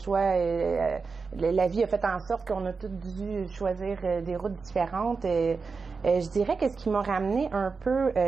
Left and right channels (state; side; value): quieter; left; 4.7 dB